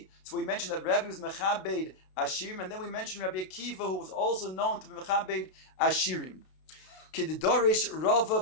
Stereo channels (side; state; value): right; late; 32 ms